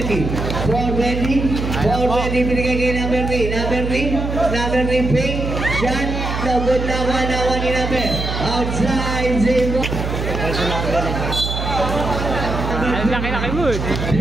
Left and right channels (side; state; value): right; noise; hum, 3 dB below the sound